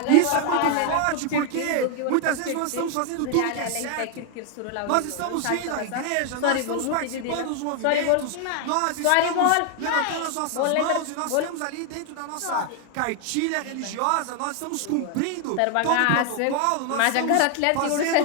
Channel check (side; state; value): both; different; correlation 0.00